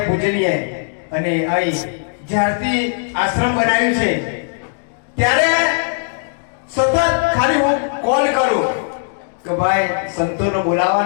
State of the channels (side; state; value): right; silent; 66 dB below the other